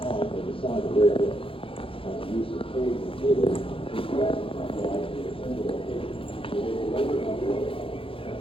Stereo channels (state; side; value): late; right; 0.26 ms